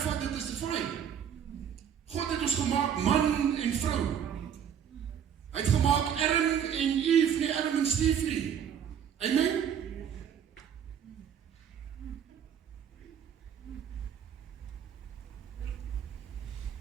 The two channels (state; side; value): quieter; left; 8.6 dB